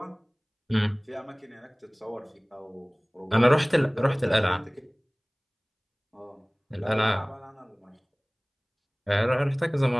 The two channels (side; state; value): both; identical; correlation 1.00